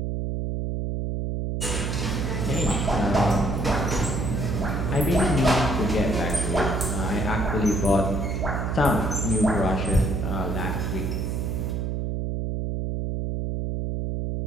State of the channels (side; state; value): right; noise; hum, 1 dB below the sound